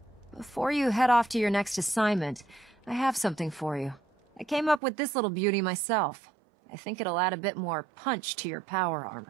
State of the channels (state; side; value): drops out; left; at 4.8 s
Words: Before you head off to your next assignment, I have something for you. I came up with this little beauty myself. I think it'll add a bit more punch to your power